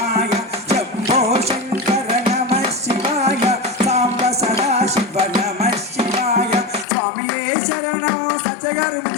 శంభో శంకర నమ శివాయ సాంబ సదా శివ నమ శివాయ స్వామియే శరణం. సత్యగారు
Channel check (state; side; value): drops out; right; at 6.9 s